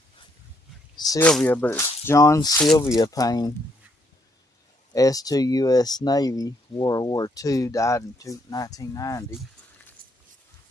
Sylvia, but it's John Sylvia Payne, S2 U.S. Navy, World War II, died in 1990.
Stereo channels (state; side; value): normal; both; correlation 0.73